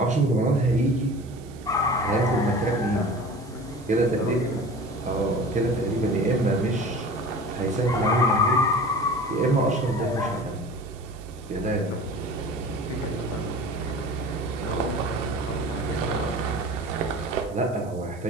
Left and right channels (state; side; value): noise; right; hiss, 26 dB below the sound